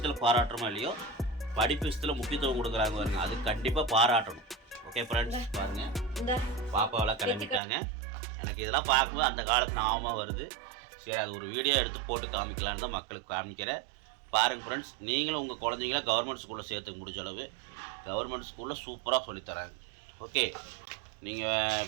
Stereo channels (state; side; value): drops out; left; at 7.6 s